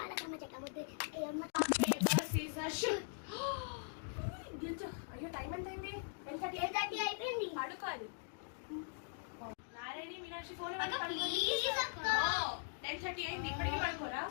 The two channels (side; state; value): right; silent; digital silence